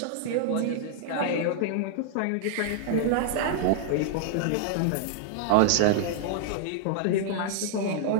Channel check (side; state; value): both; different; correlation -0.01